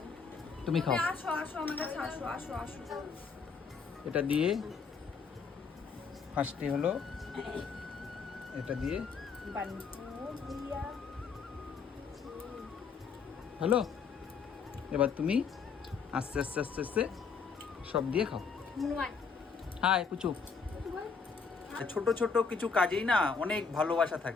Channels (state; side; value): quieter; right; 5.5 dB